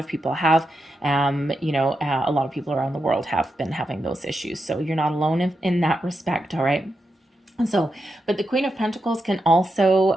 people have, a lot of people around the world have been having those issues. So you're not alone in that respect, all right? So, but the Queen of Pentacles can also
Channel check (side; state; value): both; normal; correlation 0.87